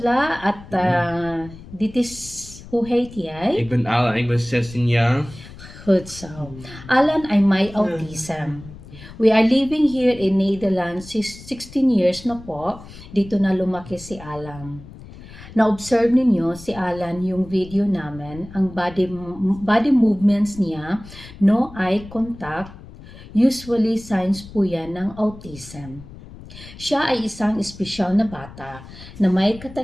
at dit is hoe heet jij? Ik ben Alan, ik ben 16 jaar. Goed zo. Alan ay may autism. We are living here in Netherlands 16 years na po. Dito na lumaki si Alan. Na-observe ninyo si Alan yung video namin, ang body movements niya, no eye contact, usually signs po yan ng autism. Siya ay isang espesyal na bata na may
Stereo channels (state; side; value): noise; left; rumble, 17 dB below the sound